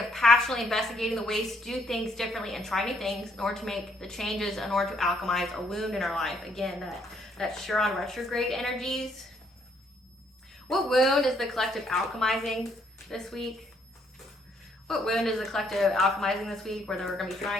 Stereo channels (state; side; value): normal; both; correlation 0.69